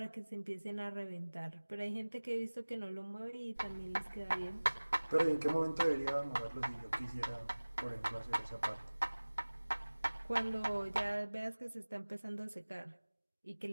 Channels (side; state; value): both; inverted; correlation -1.00